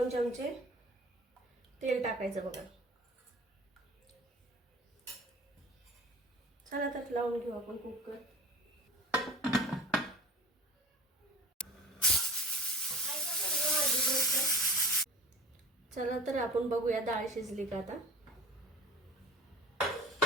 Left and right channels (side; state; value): both; normal; correlation 0.40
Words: चमचे तेल टाकायचं बघा। चला तर लावून घेऊ आपण कुकर। चला तर आपण बघूया डाळ शिजली का आता।